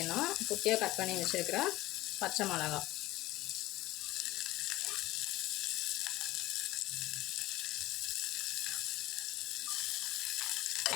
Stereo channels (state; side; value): quieter; right; 17.9 dB